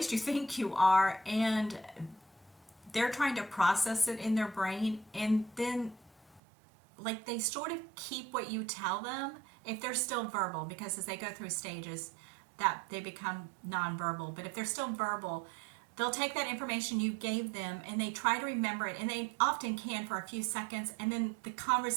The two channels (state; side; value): drops out; left; at 6.4 s